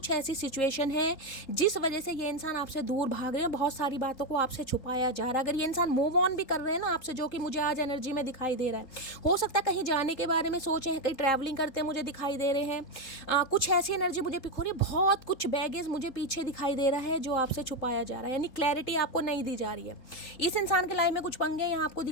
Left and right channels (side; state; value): right; late; 3.7 ms